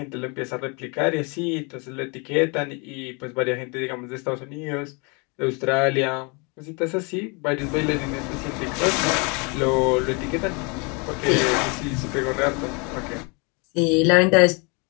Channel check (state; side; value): quieter; right; 31.6 dB